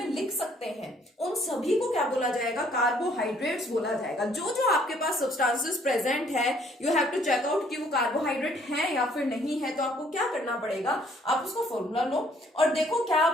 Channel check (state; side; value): normal; both; correlation 0.63